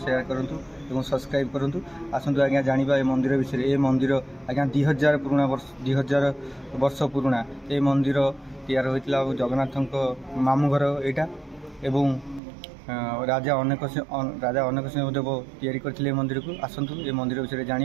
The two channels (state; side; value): drops out; left; at 12.4 s